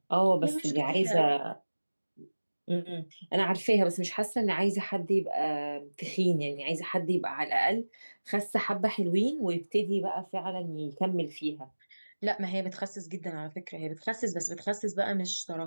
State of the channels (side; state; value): both; inverted; correlation -1.00